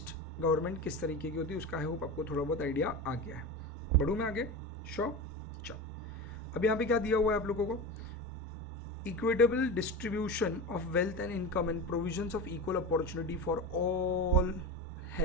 गवर्नमेंट किस तरीके की होती है उसका आई होप आपको थोड़ा बहुत आइडिया आ गया है। बढ़ूँ मैं आगे, श्योर। चल अब यहाँ पे क्या दिया हुआ है आप लोगों को, equitable distribution of wealth and income and provisions of equal opportunity for all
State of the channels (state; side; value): normal; both; correlation 0.25